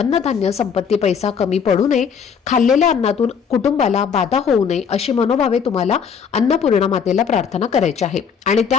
संपत्ती, पैसा कमी पडू नये, खाल्लेल्या अन्नातून कुटुंबाला बाधा होऊ नये अशी मनोभावे तुम्हाला अन्नपूर्णा मातेला प्रार्थना करायची आहे. आणि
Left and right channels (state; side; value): quieter; right; 6.8 dB